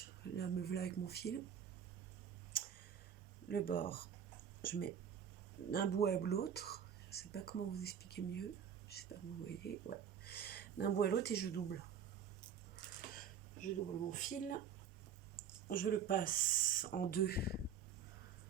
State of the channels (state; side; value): quieter; left; 7.8 dB